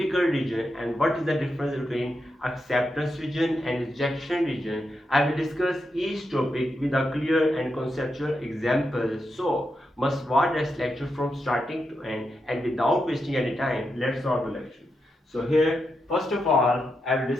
region? And what is the difference between acceptance region and rejection region? I will discuss each topic with a clear and conceptual example. So, must watch this lecture from starting to end, and without wasting any time, let's start the lecture. So here, first of all, I will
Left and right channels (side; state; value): both; normal; correlation 0.85